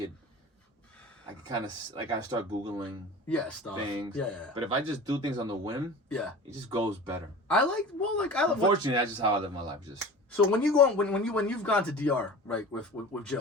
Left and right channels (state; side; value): normal; both; correlation 0.37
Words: kind of like I start Googling stuff. things. Yeah. But if I just do things on the whim, it just goes better. I like. Unfortunately, that's just how I live my life. Just. So when you go when you've gone to DR right with